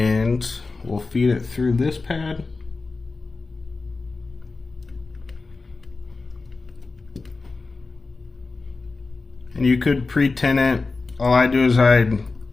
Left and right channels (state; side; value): quieter; right; 3.8 dB